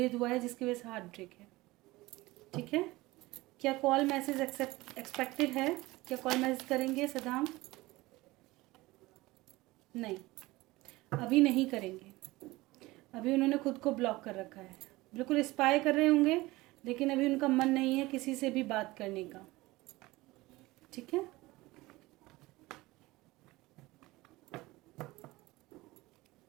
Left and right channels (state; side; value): quieter; left; 20.1 dB